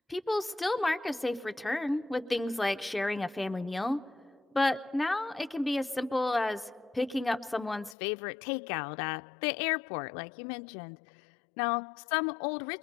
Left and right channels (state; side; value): drops out; right; at 8.0 s